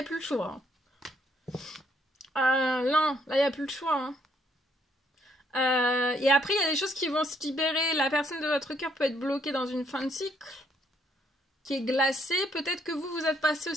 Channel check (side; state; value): both; normal; correlation 0.70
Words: plus le choix. Hein. Non, là, il n'y a plus le choix. Hein. Et après, il y a des choses qui vont se libérer. La personne de votre cœur peut être bloquée dans une fin de cycle qui est glacée. Peut-être que vous êtes passé